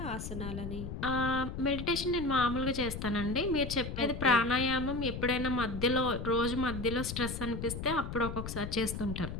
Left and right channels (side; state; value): left; noise; rumble, 7 dB below the sound